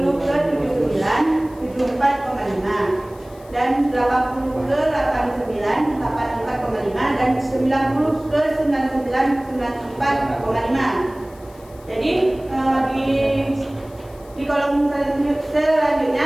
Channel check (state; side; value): noise; left; hiss, 27 dB below the sound